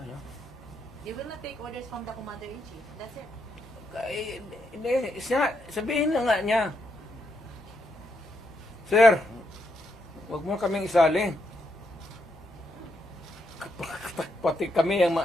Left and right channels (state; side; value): normal; both; correlation 0.79